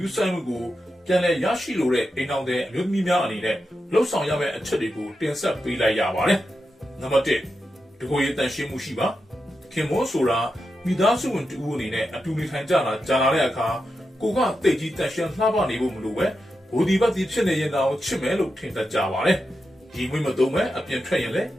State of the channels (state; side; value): normal; both; correlation 0.88